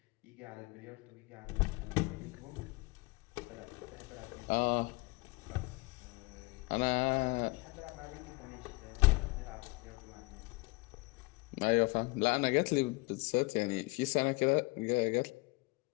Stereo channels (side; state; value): right; quieter; 25.0 dB